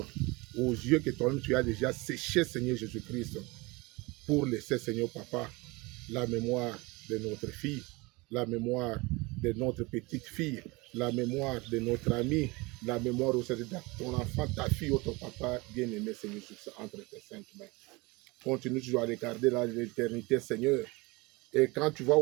aux yeux que toi-même tu as déjà séché Seigneur Jésus-Christ pour laisser Seigneur Papa la mémoire de notre fille, la mémoire de notre petite fille, la mémoire de notre ami, la mémoire aussi de ton enfant, ta fille ou ton papa bien-aimé, Seigneur Jésus, entre tes saintes mains. Continue toujours à regarder l'éternité, Seigneur. Et quand tu vas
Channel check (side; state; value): left; quieter; 24.5 dB